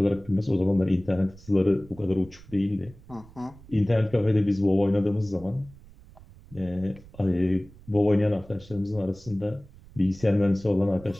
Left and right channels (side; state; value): right; noise; rumble, 22 dB below the sound